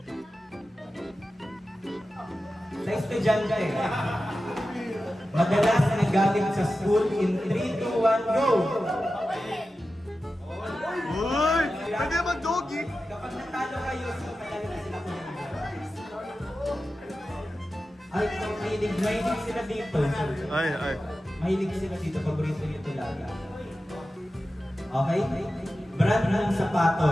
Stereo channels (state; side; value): normal; both; correlation 0.93